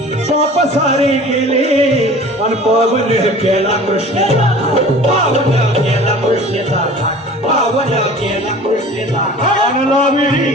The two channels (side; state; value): both; normal; correlation 0.43